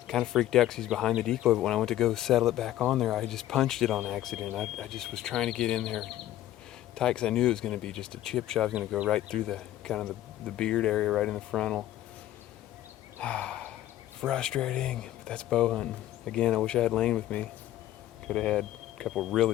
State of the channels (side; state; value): right; quieter; 13.5 dB